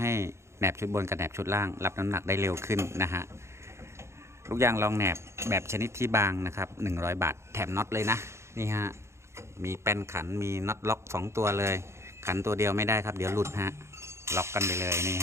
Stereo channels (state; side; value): late; left; 0.13 ms